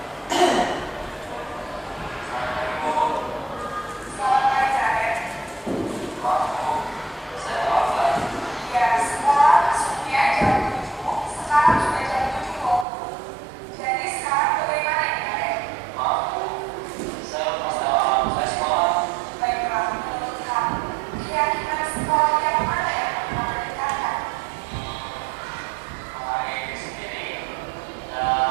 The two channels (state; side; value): drops out; left; at 12.9 s